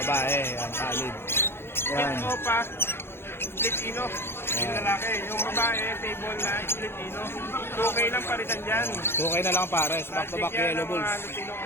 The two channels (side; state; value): right; late; 0.11 ms